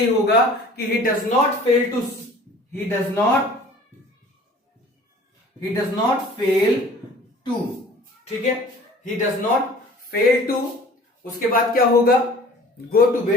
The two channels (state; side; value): normal; both; correlation 0.47